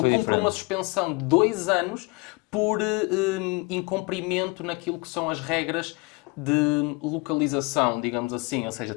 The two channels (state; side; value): quieter; right; 28.3 dB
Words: cumpre uma suspensão de 2 anos por incumprimento naquilo que são as regras de localização, digamos assim. Ou seja,